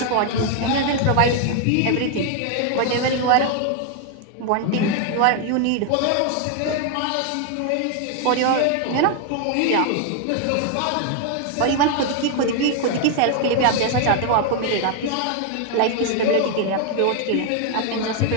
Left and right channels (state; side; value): different; both; correlation 0.01